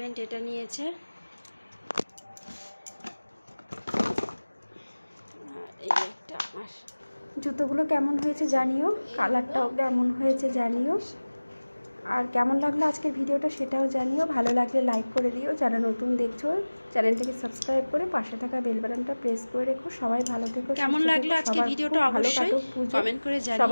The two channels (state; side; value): inverted; both; correlation -1.00